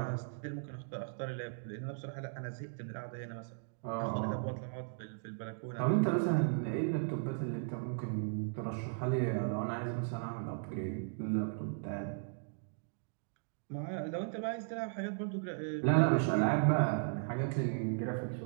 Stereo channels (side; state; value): left; silent; digital silence